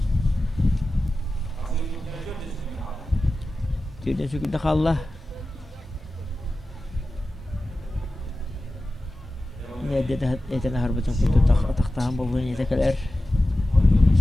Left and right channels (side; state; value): both; normal; correlation 0.95